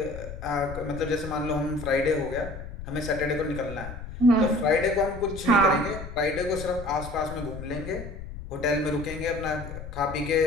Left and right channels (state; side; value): noise; left; rumble, 10 dB below the sound